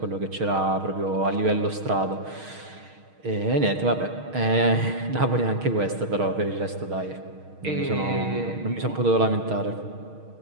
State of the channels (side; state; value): left; late; 6.4 ms